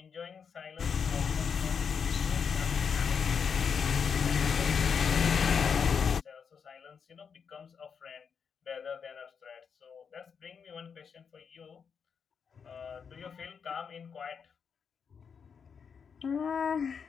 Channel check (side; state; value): right; quieter; 6.5 dB